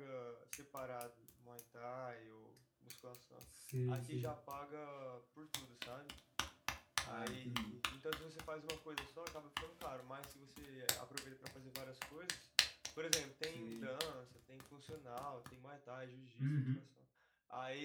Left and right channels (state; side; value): identical; both; correlation 1.00